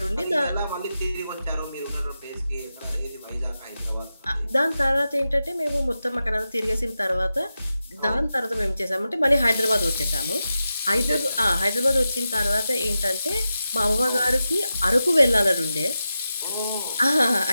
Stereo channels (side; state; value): both; inverted; correlation -0.91